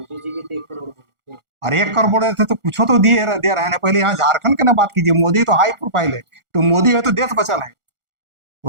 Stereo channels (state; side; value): late; left; 1.4 ms